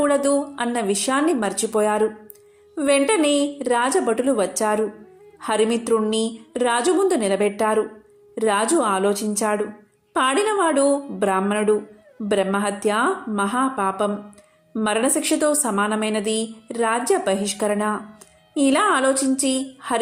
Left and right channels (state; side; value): identical; both; correlation 1.00